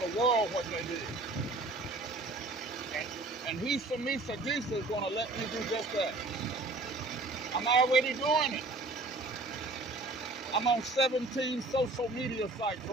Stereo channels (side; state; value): left; quieter; 3.1 dB